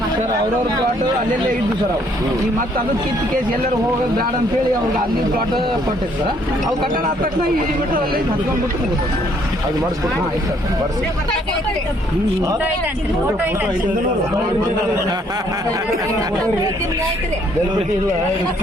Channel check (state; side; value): normal; both; correlation 0.66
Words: ಸರ್ ಅವ್ರವ್ರ ಪ್ಲಾಟ್ ಅಲ್ಲೆಲ್ಲೇ ಇದ್ದು ಸರ್. ಅವು ಈಗ ಮತ್ತೆ ಅದು ಕಿತ್ತು ಕೇಸ್ ಎಲ್ಲರೂ ಹೋಗೋದು ಬೇಡ ಅಂತ ಹೇಳಿ ಅವ್ರಿಗೆ ಅಲ್ಲಿ ಪ್ಲಾಟ್ ಕೊಟ್ಟಿತ್ತು ಸರ್. ಅವು ಕಟ್ಟಡ ಆದ ತಕ್ಷಣ ಇಲ್ಲಿ ಬಿಟ್ಟು ಅಲ್ಲಿ ಹತ್ಕೊಂಡ್ಬಿಟ್ಟು ಮುಗಿದು ಅದು ಮಾಡಿಸ್ಕೊಟ್ಟು